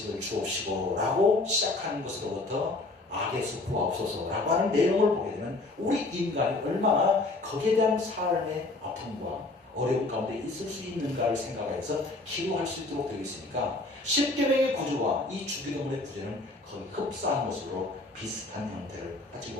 주옵시고 라고 시작하는 것으로부터 악에서 구하옵소서 라고 하는 내용을 보게 되면 우리 인간이 얼마나 거기에 대한 삶의 아픔과 어려움 가운데 있을 수 있는가를 생각해서 기도할 수 있도록 되어 있으니까 십계명의 구조와 이 주기도문의 구조는 거의 흡사한 것으로 비슷한 형태를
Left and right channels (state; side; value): quieter; right; 3.1 dB